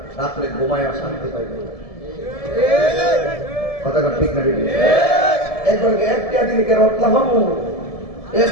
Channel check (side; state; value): right; late; 1.7 ms